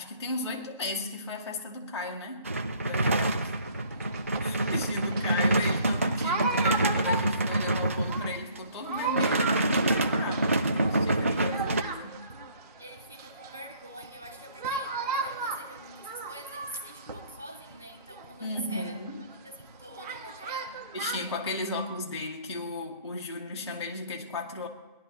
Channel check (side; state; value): both; inverted; correlation -0.57